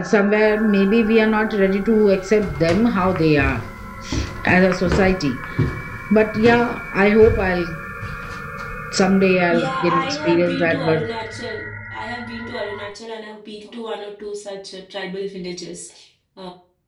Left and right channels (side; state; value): both; identical; correlation 1.00